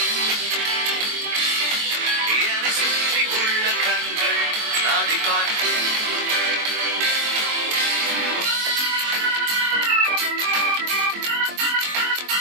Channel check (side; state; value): left; late; 23 ms